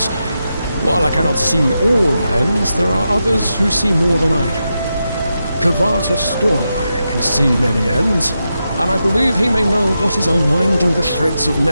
While I cannot see all ends, there are others who see more than I do. Kavata Stormeye can see many ends, and I believe he may know what is unwinding the threads of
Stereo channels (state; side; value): inverted; both; correlation -0.87